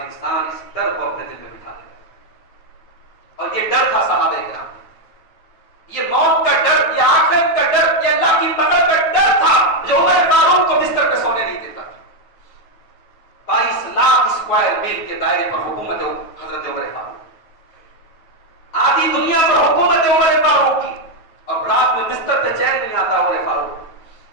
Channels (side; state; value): right; late; 9.2 ms